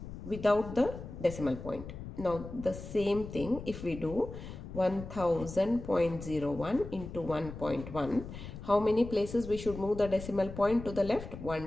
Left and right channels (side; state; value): left; noise; rumble, 11 dB below the sound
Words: without the decimal point. Now the same thing, if we do 1000.01 into 1.1, how many places we should move the decimal point to the left?